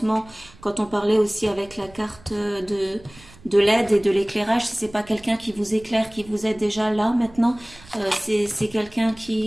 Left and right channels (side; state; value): right; noise; rumble, 23 dB below the sound